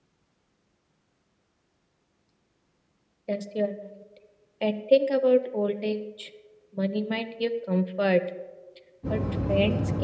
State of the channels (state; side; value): identical; both; correlation 1.00